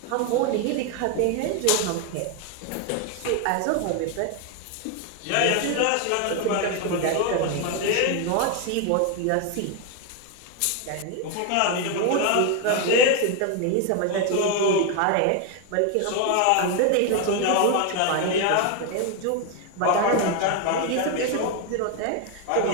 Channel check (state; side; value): different; both; correlation 0.01